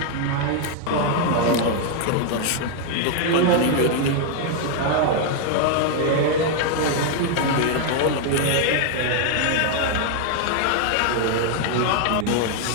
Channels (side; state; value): both; different; correlation 0.00